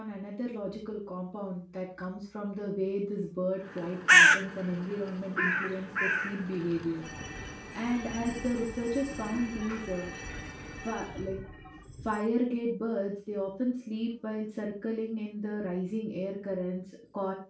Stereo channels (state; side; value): identical; both; correlation 1.00